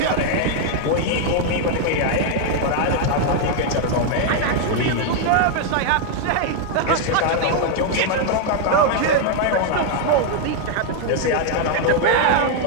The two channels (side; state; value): both; different; correlation 0.00